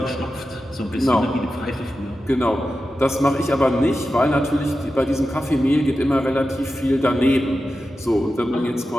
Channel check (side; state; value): both; normal; correlation 0.92